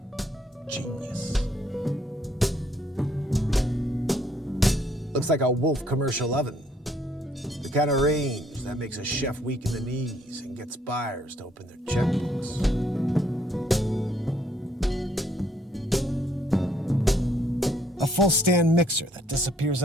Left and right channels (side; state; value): both; normal; correlation 0.67